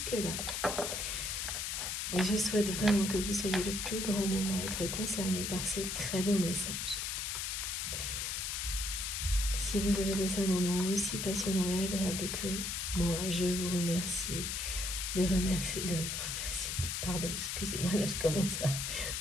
Je souhaite vraiment que vous soyez le plus grand nombre à être concernés par ces très beaux messages. Si vous avez passé un moment aussi passionnant et agréable que moi, je vous remercie pardon, excusez-moi, là je commence à...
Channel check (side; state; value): left; noise; hiss, 2 dB below the sound